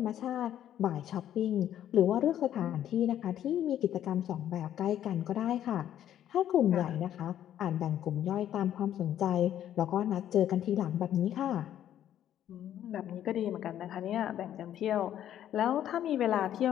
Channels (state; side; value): quieter; right; 11.1 dB